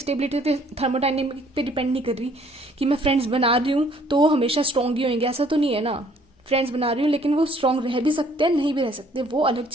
तो थर्मोडाइनमिक पे डिपेंड नहीं कर रही कि मैं फ्रेंड्स बना रही हूँ तो वो हमेशा स्ट्रॉन्ग ही होंगे, ऐसा तो नहीं है ना। फ्रेंड्स बना रही हूँ लेकिन वो स्ट्रॉन्ग रह भी सकते हैं, नहीं भी रह सकते, वो अलग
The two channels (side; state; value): both; normal; correlation 0.61